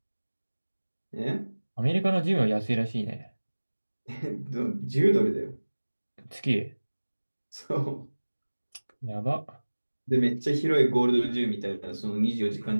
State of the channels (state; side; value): inverted; both; correlation -1.00